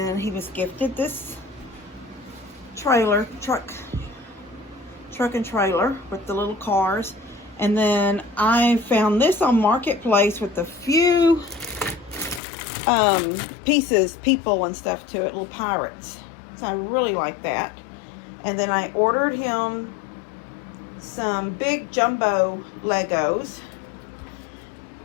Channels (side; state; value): right; drops out; at 12.4 s